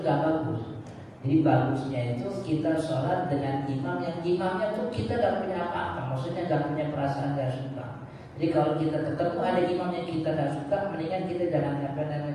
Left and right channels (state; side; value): identical; both; correlation 1.00